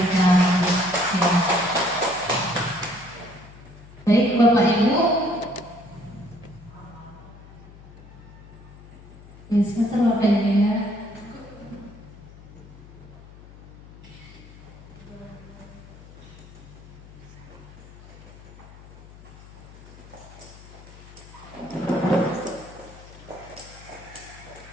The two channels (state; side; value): noise; left; hum, 19 dB below the sound